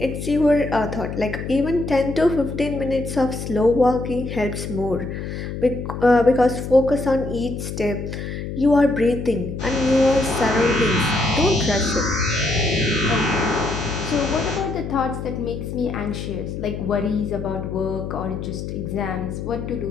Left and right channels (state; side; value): noise; left; hum, 6 dB below the sound